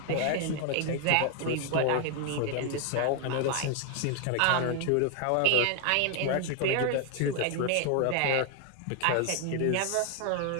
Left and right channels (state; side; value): different; both; correlation 0.00